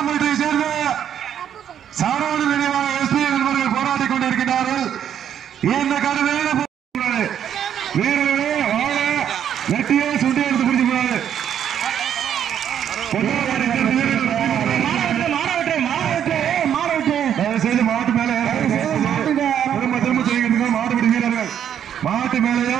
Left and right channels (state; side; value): quieter; left; 9.4 dB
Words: சேர்ந்த சாரோடு நினைவாக எஸ்பி என்பவர்கள் போராடிக் கொண்டிருக்கிறார்கள். இந்த கருவையில வீரர்களே வாழ நெட்டியே சுண்டி எடுத்து பிடிச்சு போறாரு. செய்து மாவட்ட மேல